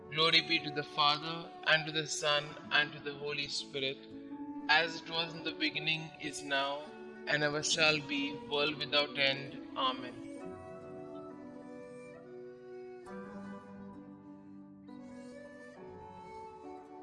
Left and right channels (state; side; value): identical; both; correlation 1.00